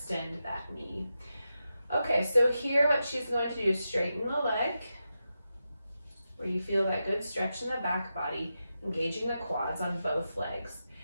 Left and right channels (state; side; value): inverted; both; correlation -0.89